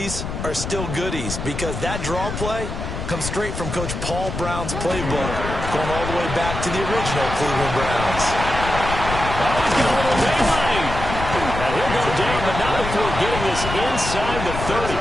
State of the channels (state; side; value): noise; left; rumble, 6 dB below the sound